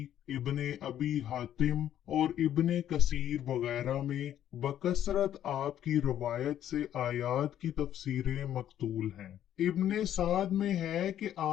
इब्ने अबी हातिम और इब्ने कसीर वगैरह में बकसरत आपकी रवायत से आयात की तफसीरें मकतूल हैं। इब्ने साद में है कि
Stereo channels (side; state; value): right; quieter; 11.0 dB